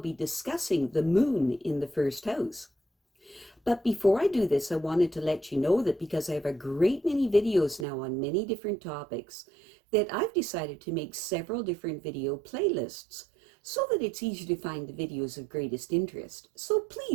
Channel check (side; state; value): left; drops out; at 7.9 s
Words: discussing the moon in the first house. But before I do this, I wanted to let you know that because I have a great many videos now on many different topics, that I've decided to make several different video playlists so that it's easy to find the videos of greatest interest. So